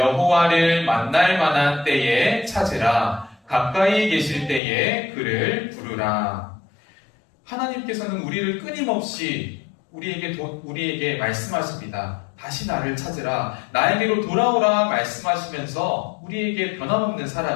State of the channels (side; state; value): right; drops out; at 4.6 s